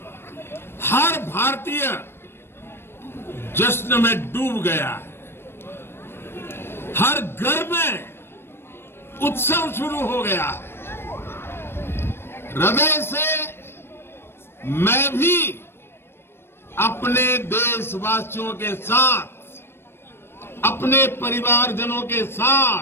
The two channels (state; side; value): late; right; 0.12 ms